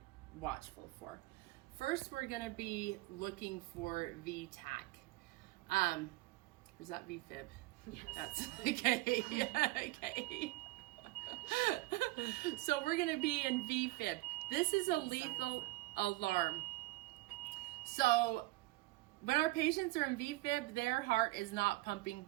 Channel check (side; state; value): left; quieter; 20.5 dB